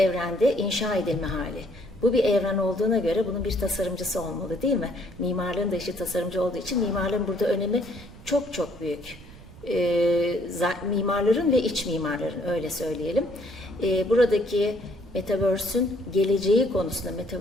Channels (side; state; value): right; noise; rumble, 19 dB below the sound